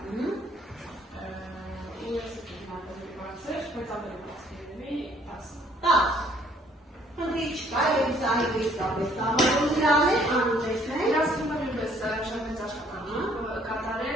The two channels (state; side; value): normal; both; correlation 0.62